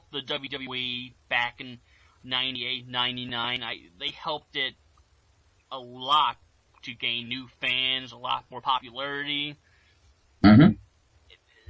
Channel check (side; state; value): both; identical; correlation 1.00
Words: the WWE back in 98, 99. They helped it a lot to gain new fans, a lot more popularity. Mm-hmm.